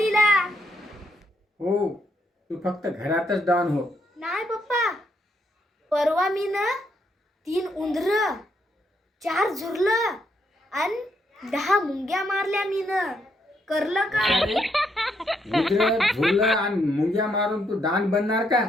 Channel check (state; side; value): normal; both; correlation 0.76